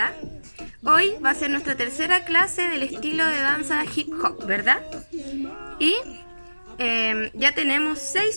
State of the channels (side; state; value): both; inverted; correlation -1.00